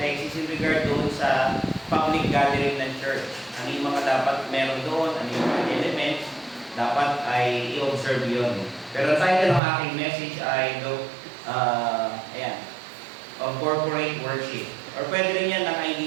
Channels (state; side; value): drops out; left; at 9.6 s